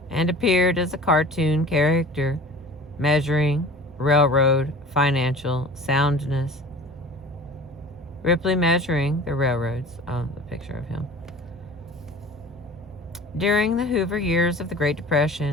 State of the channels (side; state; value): both; normal; correlation 0.41